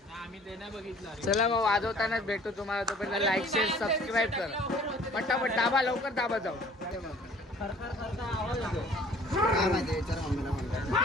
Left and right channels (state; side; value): normal; both; correlation 0.53